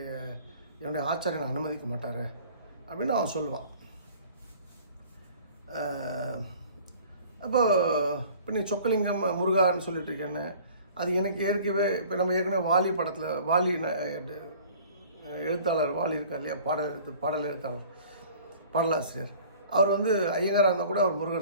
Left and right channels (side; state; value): both; inverted; correlation -0.48